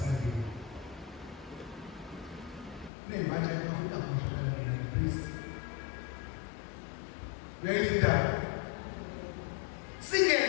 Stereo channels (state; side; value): drops out; right; at 2.9 s